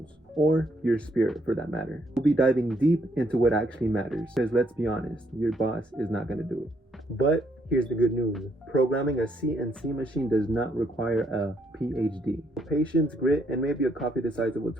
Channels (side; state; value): both; normal; correlation 0.72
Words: or your spirit for that matter. We'll be diving deep into what actually matters, because let's be honest, your boss is not going to do it. But here's the good news. Programming a CNC machine does not require a PhD. Patience, grit, and maybe a copy the size of a